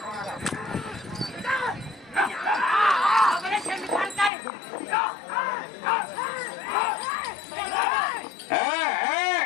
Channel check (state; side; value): drops out; right; at 4.3 s